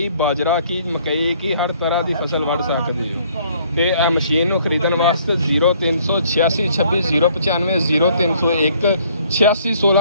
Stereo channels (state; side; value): inverted; both; correlation -0.62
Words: ਬਾਜਰਾ ਕੀ ਮਕਈ ਕੀ ਹਰ ਤਰ੍ਹਾਂ ਦੀ ਫਸਲ ਵੱਢ ਸਕਦੇ ਹੋ। ਤੇ ਇਹ ਮਸ਼ੀਨ ਨੂੰ ਖਰੀਦਣ ਵਾਸਤੇ 0386 26 095 0301 86